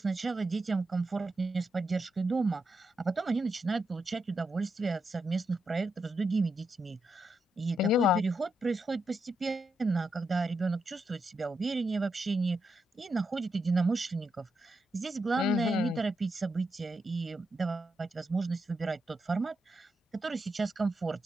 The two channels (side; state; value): both; normal; correlation 0.84